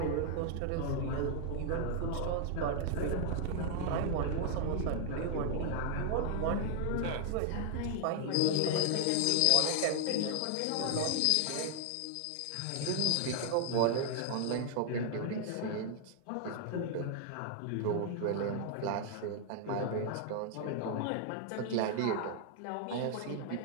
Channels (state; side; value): different; both; correlation 0.00